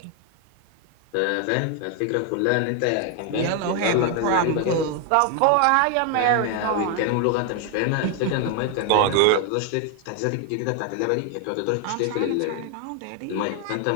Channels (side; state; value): both; different; correlation 0.01